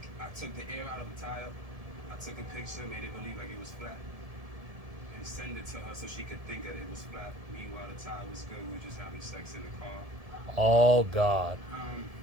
I took the air out of the tire. I took a picture, made it believe like it was flat, and send it to her so she could think that it was flat. Meanwhile, the tire was good. We were just having sex in the car. Oh, God.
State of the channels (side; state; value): left; late; 1.7 ms